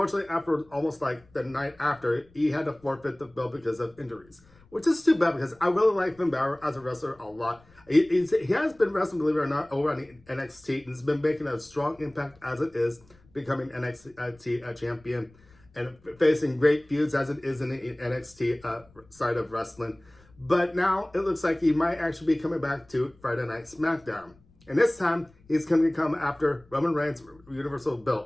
after almost like the night after, he had to forfeit the belt because of injuries. Which is too bad because I really like Finn Balor as a wrestler a lot. He has been wrestling, believe it or not, over on NXT and has been making a strong impact as it is, becoming NXT champion and facing great feuds as it is in the NXT side of wrestling. But now it looks like he might actually be coming back to Friday Night Smackdown. And this time, he's going to come after Roman Reigns' Universal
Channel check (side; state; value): left; noise; rumble, 29 dB below the sound